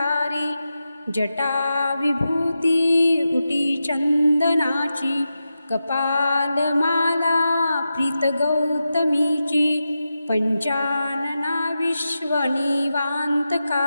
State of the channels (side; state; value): both; inverted; correlation -0.90